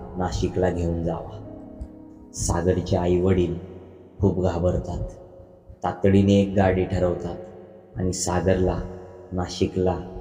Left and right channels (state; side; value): identical; both; correlation 1.00